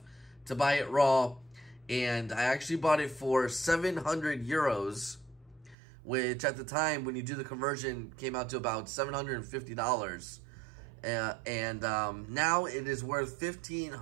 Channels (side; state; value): left; drops out; at 5.8 s